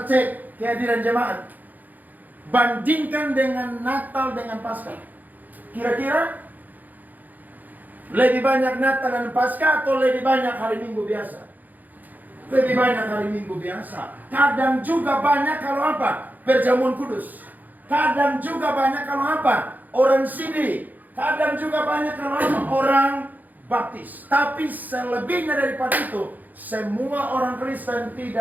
cek kehadiran jemaat. Bandingkan dengan Natal dengan Paskah. Kira-kira lebih banyak Natal dan Paskah atau lebih banyak hari Minggu biasa? Lebih banyak hari Minggu biasa. Kadang juga banyak kalau apa? Perjamuan kudus. Kadang juga banyak kalau apa? Orang sidi. Kadang juga banyak kalau apa? Orang baptis. Tapi selebihnya daripada itu, semua orang Kristen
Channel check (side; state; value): left; late; 0.083 ms